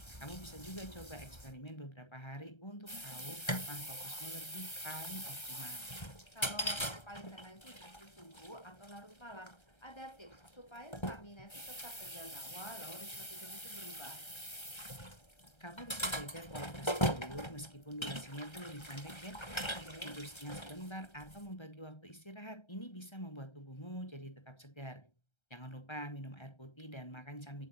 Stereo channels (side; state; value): right; late; 1.3 ms